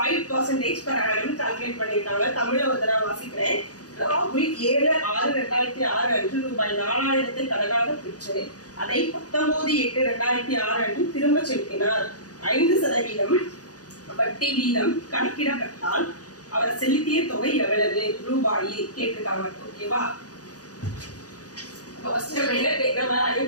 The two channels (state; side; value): late; right; 0.67 ms